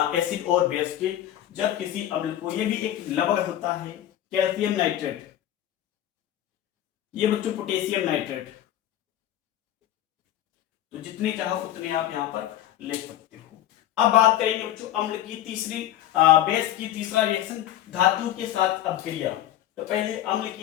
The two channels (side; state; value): right; quieter; 12.4 dB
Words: एसिड और बेस के, जब किसी अम्ल को, ये भी एक लवण होता है कैल्शियम नाइट्रेट, ये बच्चों पोटेशियम नाइट्रेट, तो जितने चाहो उतने आप यहाँ पर ले सकते हो। अब बात करेंगे बच्चों अम्ल की तीसरी बेस की तीसरा रिएक्शन धातु के साथ अपक्रिया। तो पहले अम्ल की